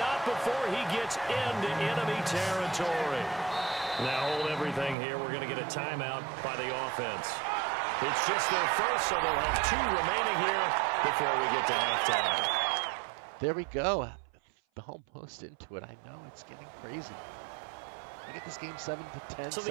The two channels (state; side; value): drops out; left; at 5.0 s